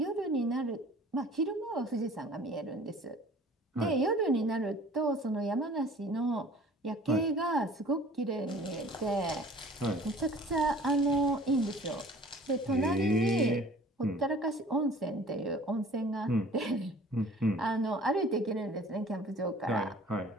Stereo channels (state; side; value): normal; both; correlation 0.48